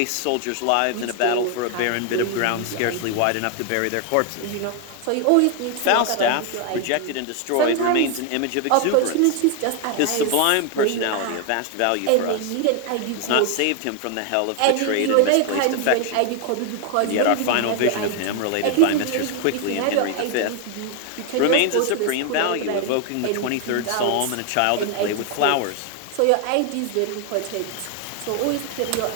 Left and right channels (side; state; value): both; different; correlation 0.00